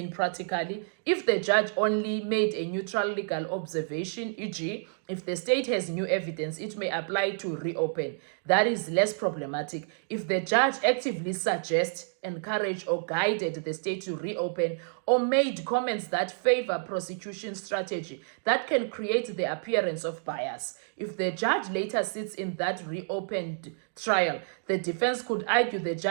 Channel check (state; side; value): silent; left; digital silence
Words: practically? If the judge only made a neutral legal observation, e.g., if the state has new evidence, it may apply to reopen. That is less problematic. If the judge actively suggests, encouraged, or guided the state to reopen, or made comments that favor prosecution strategy, that can create the appearance of bias. If the judge later sits in that reopened trial, the defense could argue the